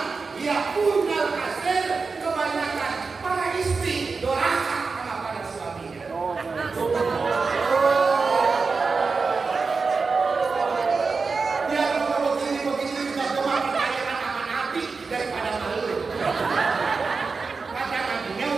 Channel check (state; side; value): quieter; left; 4.6 dB